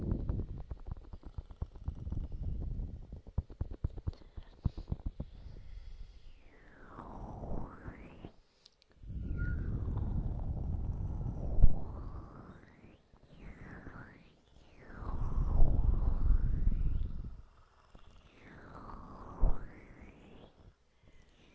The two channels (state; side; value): identical; both; correlation 1.00